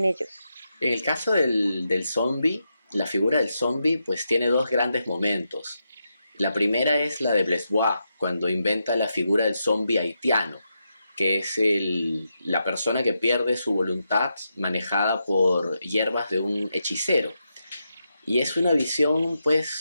ellos. En el caso del zombie, la figura del zombie pues tiene dos grandes momentos. La primera es la de Blesbois, cuando inventa la figura del zombie haitiano, que es la persona que pierde su voluntad manejada por hierbas de un hechicero. Y es una visión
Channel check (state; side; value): inverted; both; correlation -0.85